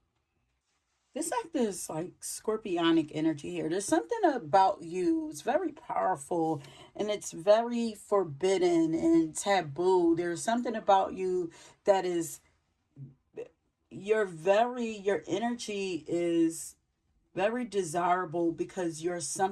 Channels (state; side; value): identical; both; correlation 1.00